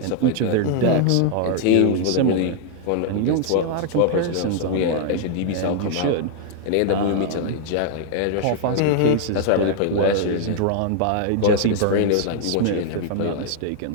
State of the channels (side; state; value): both; different; correlation 0.00